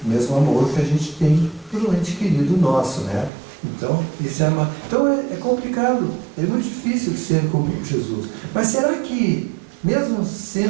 o mesmo amor que a gente tem por um ente querido nosso, né? Então, esse é amar. Então é complicado, é muito difícil ser como Jesus. Mas será que, mesmo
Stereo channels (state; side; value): drops out; left; at 3.3 s